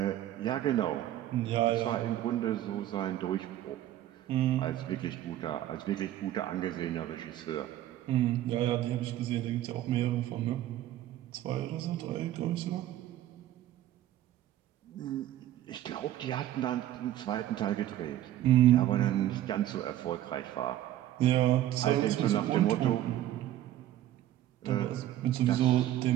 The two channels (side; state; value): left; quieter; 13.0 dB